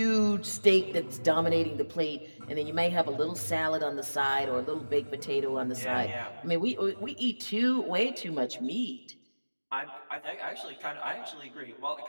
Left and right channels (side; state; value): both; inverted; correlation -1.00